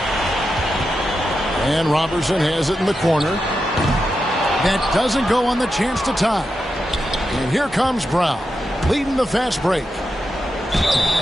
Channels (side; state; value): both; normal; correlation 0.88